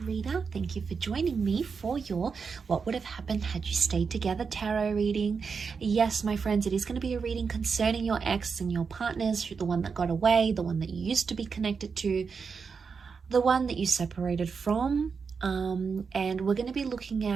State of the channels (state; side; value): quieter; left; 5.5 dB